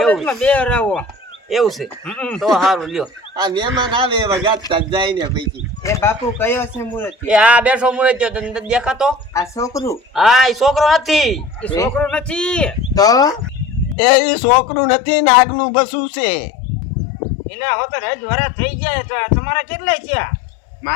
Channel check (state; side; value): drops out; right; at 14.0 s